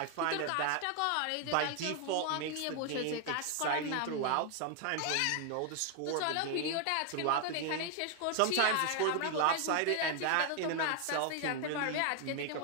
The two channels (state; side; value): different; both; correlation 0.00